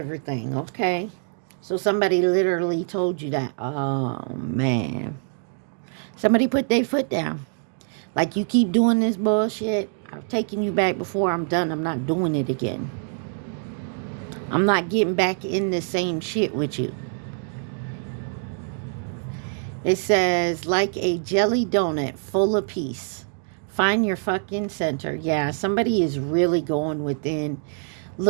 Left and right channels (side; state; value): left; silent; digital silence